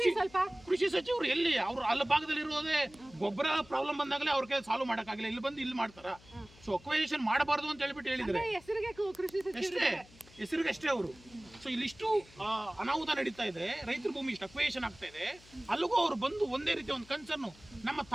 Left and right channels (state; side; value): noise; left; hum, 24 dB below the sound